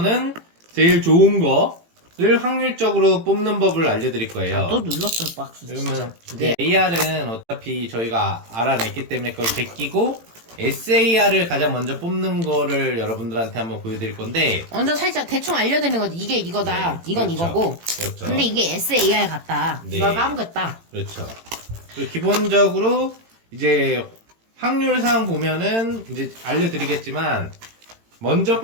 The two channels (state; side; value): late; left; 18 ms